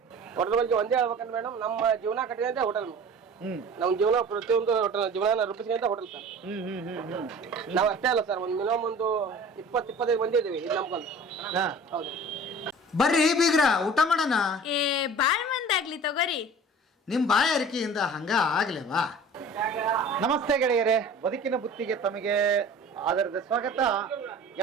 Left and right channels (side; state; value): both; normal; correlation 0.42